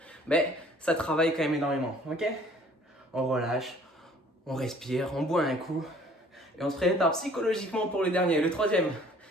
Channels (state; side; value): normal; both; correlation 0.55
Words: mais ça travaille quand même énormément, ok. On relâche, on respire, on boit un coup, et on se prépare psychologiquement pour le dernier, le troisième.